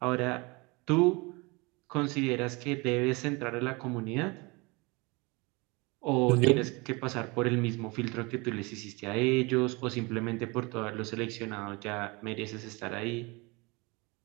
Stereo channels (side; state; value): left; quieter; 26.8 dB